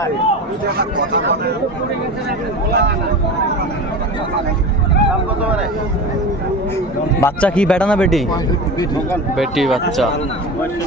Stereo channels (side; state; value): both; normal; correlation 0.29